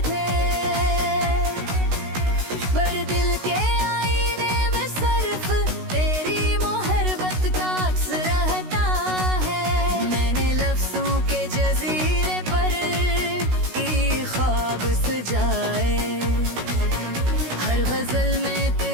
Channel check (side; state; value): left; late; 16 ms